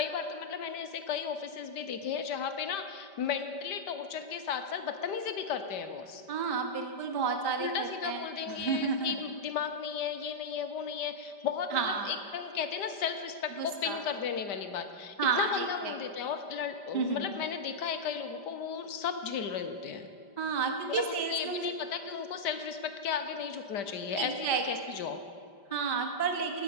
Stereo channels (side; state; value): right; late; 5.1 ms